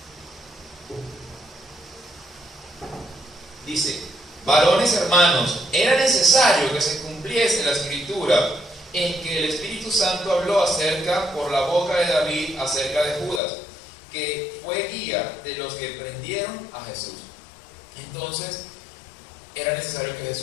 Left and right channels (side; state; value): right; drops out; at 13.4 s